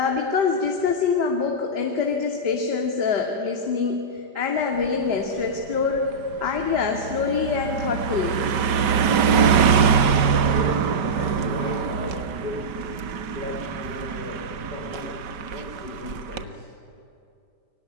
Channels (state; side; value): late; left; 5.0 ms